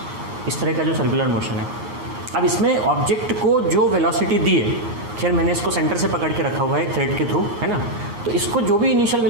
इस तरह का जो सर्कुलर मोशन है। अब इसमें ऑब्जेक्ट को जो वेलोसिटी दी है, खैर मैंने इसको सेंटर से पकड़ के रखा हुआ है थ्रेड के थ्रू, है ना। तो इसको जो भी इनिशियल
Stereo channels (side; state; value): left; late; 8.6 ms